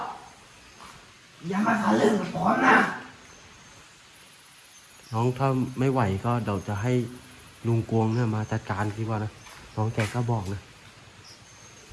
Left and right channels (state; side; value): identical; both; correlation 1.00